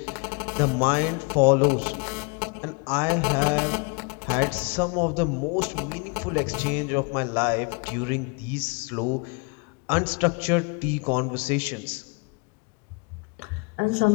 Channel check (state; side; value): quieter; right; 32.4 dB